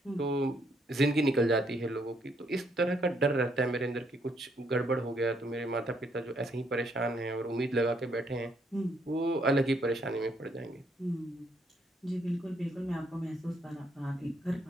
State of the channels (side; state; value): both; normal; correlation 0.72